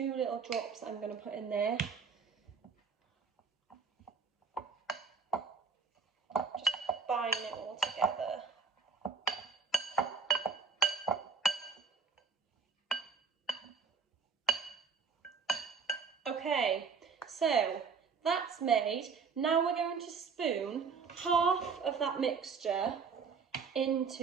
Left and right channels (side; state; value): left; quieter; 5.7 dB